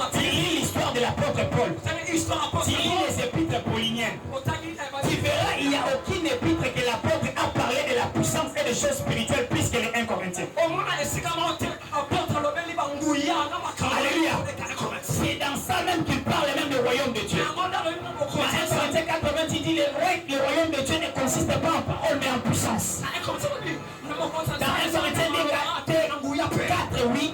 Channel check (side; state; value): both; identical; correlation 1.00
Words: tu lis l'histoire de l'apôtre Paul, tu lis les épîtres pauliniennes, tu verras, il n'y a aucune épître que l'apôtre a parlé de la puissance et des choses spirituelles plus que les 1 Corinthiens. Alléluia. C'est dans ça même qu'il parle même du royaume de Dieu. Dans 1 Corinthiens 80, il dit le royaume de Dieu ne consiste pas en parole mais en puissance. Dans 1 Corinthiens 4, oui,